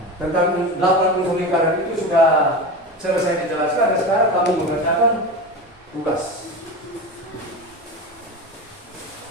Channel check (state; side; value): normal; both; correlation 0.25